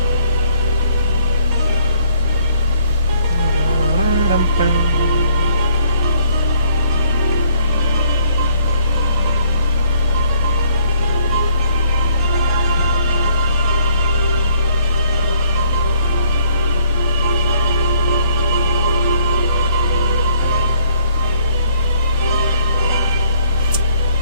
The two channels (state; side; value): inverted; both; correlation -0.62